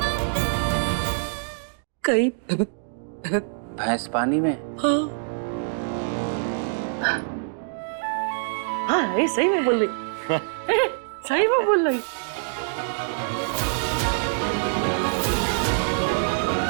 कई भैंस पानी में। हाँ, ये सही में बोल रही। सही में बोल रही?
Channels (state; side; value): silent; left; digital silence